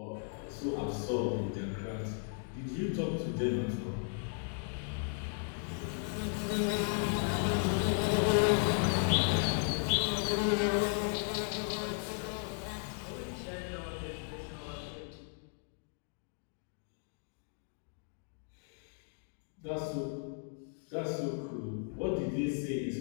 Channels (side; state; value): right; silent; 54 dB below the other